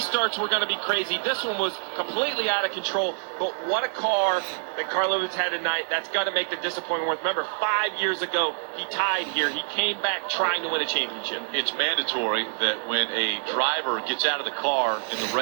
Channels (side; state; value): left; silent; digital silence